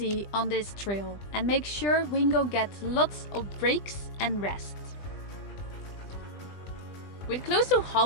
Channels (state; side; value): late; right; 20 ms